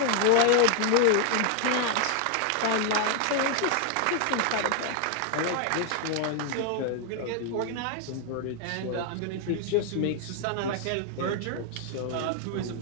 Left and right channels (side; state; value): both; different; correlation 0.00